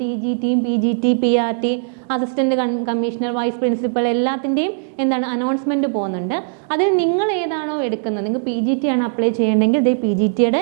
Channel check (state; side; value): silent; left; digital silence